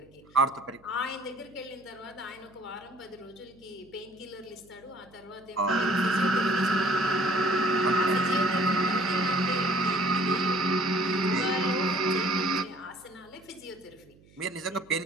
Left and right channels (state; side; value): noise; right; hum, 27 dB below the sound